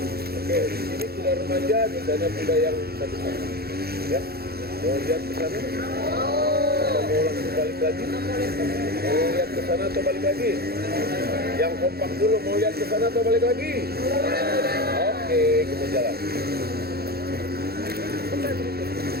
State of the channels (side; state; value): left; late; 0.46 ms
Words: Oke, di sini kuda remaja, di sana kuda yang satu-satu. Ya, mau lihat ke sana? Atau mau langsung balik lagi? Mau lihat ke sana atau balik lagi? Yang kompak dulu, mau lihat ke sana atau balik lagi? Oke, kita jalan.